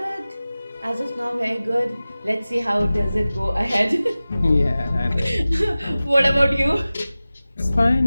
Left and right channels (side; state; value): both; inverted; correlation -0.97